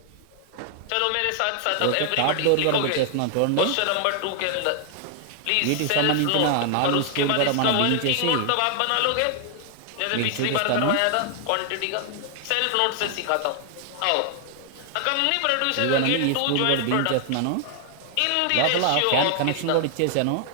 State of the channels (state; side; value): different; both; correlation 0.00